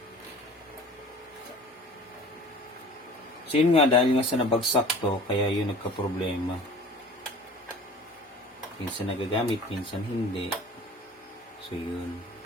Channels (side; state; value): both; normal; correlation 0.44